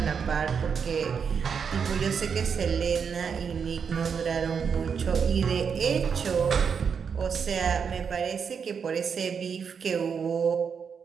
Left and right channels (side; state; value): left; quieter; 6.5 dB